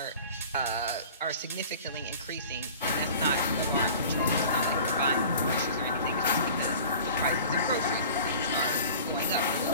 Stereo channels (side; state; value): both; inverted; correlation -0.43